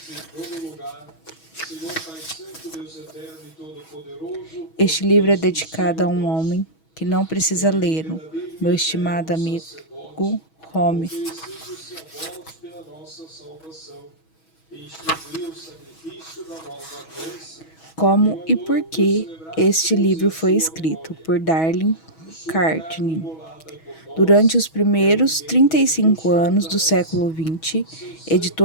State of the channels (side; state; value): right; late; 6.2 ms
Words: Este livro é dedicado a um homem que não precisa lê-lo, meu estimado amigo Home. Como e por que este livro foi escrito por Darlene Carnegie. Durante os primeiros 35 anos do século XX,